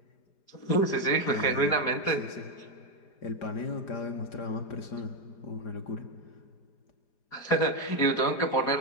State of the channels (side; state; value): right; late; 4.9 ms